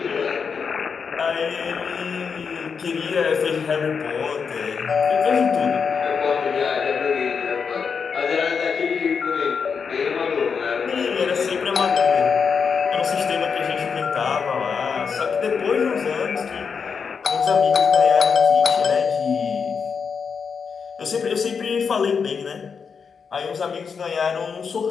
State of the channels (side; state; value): right; quieter; 6.0 dB